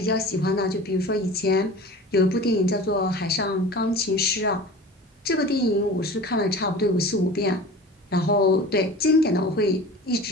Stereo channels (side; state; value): both; normal; correlation 0.37